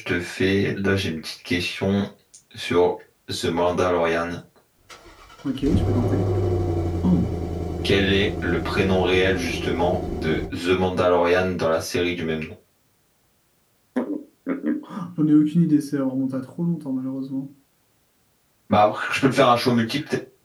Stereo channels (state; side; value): identical; both; correlation 1.00